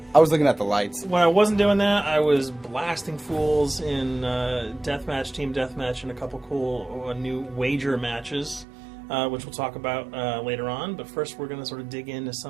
I was looking at the lights. When I wasn't doing that, I was blasting fools in deathmatch, team deathmatch, and a couple cool new wager matches, which we'll talk about later on. But first, we're going to sort of dig into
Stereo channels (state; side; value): drops out; left; at 8.7 s